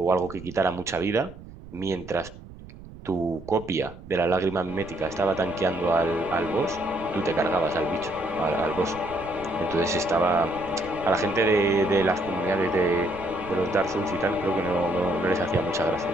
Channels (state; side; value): noise; right; rumble, 17 dB below the sound